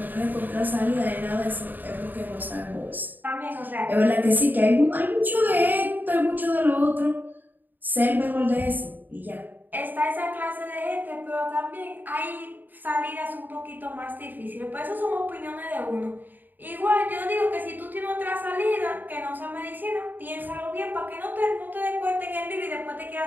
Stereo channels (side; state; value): left; late; 0.088 ms